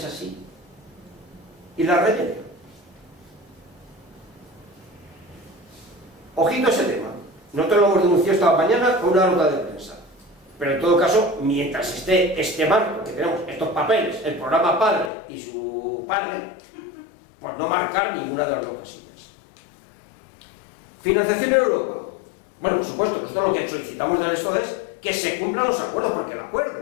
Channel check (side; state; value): right; drops out; at 15.1 s